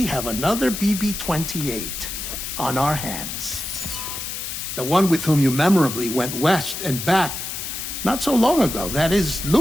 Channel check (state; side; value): noise; left; hiss, 6 dB below the sound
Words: have another BB-28 on our hands. The one with whom you memorably went west and back not so long ago, that is